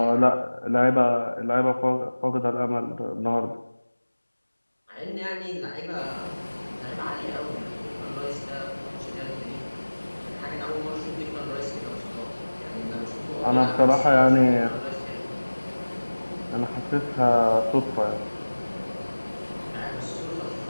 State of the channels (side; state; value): both; inverted; correlation -1.00